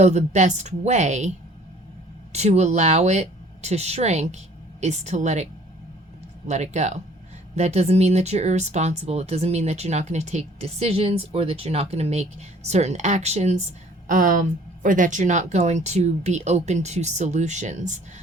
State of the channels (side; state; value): both; normal; correlation 0.54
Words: the best way to allow it to shrink is to let it go. That doesn't mean that you're irresponsible. It doesn't mean that you're not going to take decisions, or that you're not going to make certain actions, or that you're not going to be open to solutions.